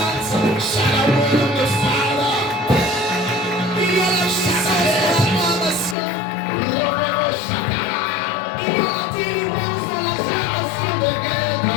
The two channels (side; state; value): right; drops out; at 6.0 s